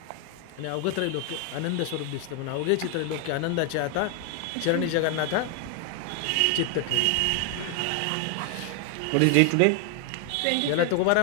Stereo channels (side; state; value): both; different; correlation 0.00